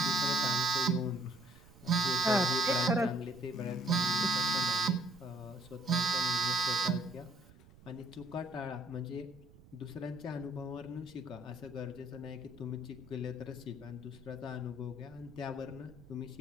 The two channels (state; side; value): noise; right; rumble, 22 dB below the sound